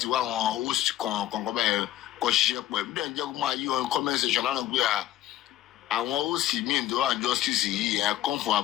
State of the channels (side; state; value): right; quieter; 13.4 dB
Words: wá àwọn host kan bẹ́ẹ̀ kọ́ ṣiṣẹ́ pọ̀ ẹ̀mí dẹ̀ ń jẹ́ kó máa yí on comment section lánàá pé àwọn host míì tó wà justice yìí come for